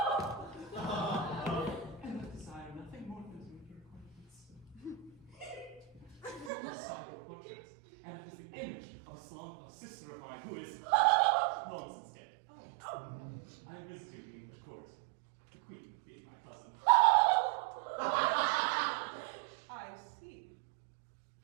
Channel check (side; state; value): left; drops out; at 6.5 s